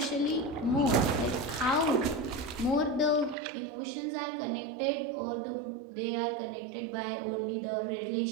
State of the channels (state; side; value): drops out; left; at 3.4 s